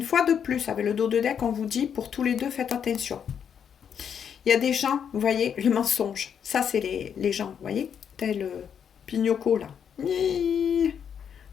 fois de plus, avec le dos de deck, on vous dit, pour tous les deux, faites attention. Il y a des gens, vous voyez, le mensonge. Ça, c'est les gens, vous voyez, tel Pignocco, là.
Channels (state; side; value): quieter; right; 7.9 dB